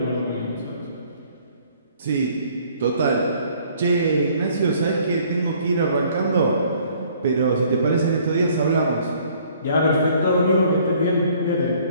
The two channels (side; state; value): both; inverted; correlation -0.59